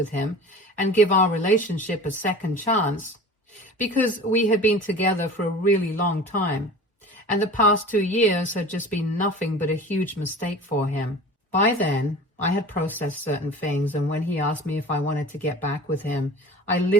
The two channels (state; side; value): normal; both; correlation 0.38